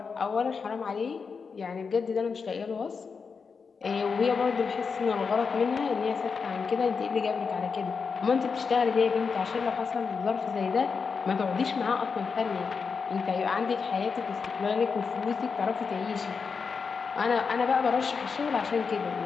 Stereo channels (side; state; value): right; quieter; 5.4 dB